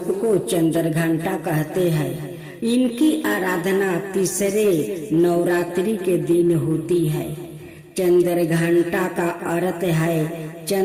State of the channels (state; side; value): identical; both; correlation 1.00